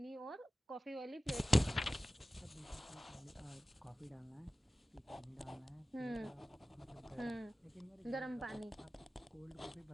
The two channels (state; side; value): normal; both; correlation 0.96